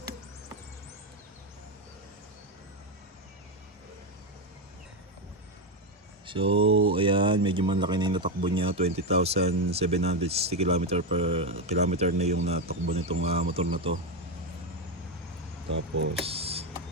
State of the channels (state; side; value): normal; both; correlation 0.09